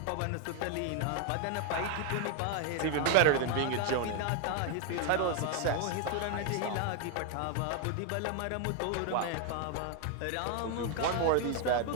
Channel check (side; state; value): both; different; correlation 0.00